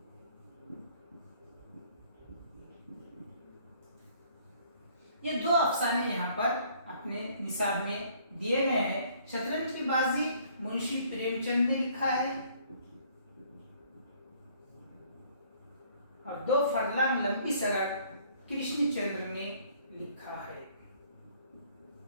ये 2 अफसाने यहाँ पर अपने निसाब में दिए गए हैं। शतरंज की बाजी मुंशी प्रेमचंद ने लिखा है और 2 फरलांग लंबी सड़क कृष्णचंद्र ने लिखा है।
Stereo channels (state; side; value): inverted; both; correlation -0.60